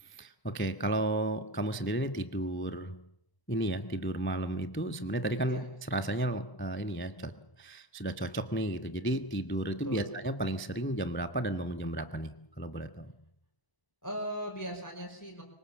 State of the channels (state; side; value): late; right; 1.0 ms